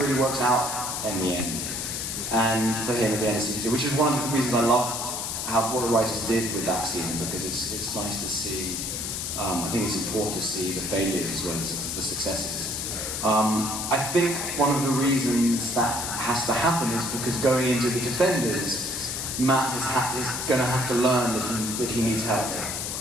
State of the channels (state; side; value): noise; left; hiss, 3 dB below the sound